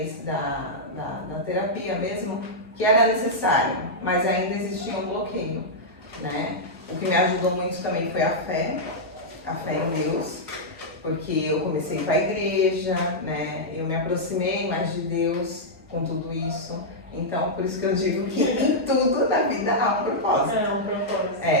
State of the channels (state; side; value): normal; both; correlation -0.07